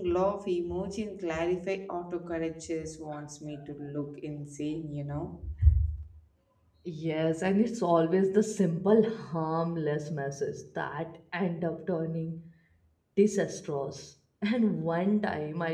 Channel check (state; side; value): identical; both; correlation 1.00